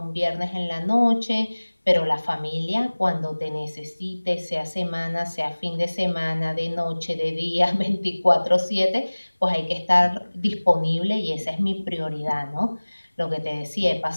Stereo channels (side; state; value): both; inverted; correlation -1.00